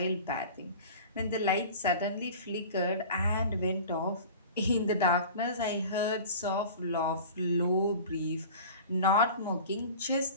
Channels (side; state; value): both; inverted; correlation -0.38